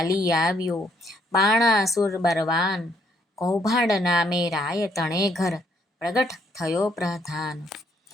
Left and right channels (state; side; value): normal; both; correlation 0.69